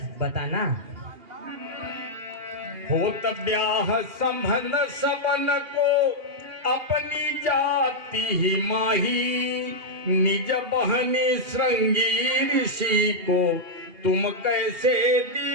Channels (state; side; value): late; left; 2.8 ms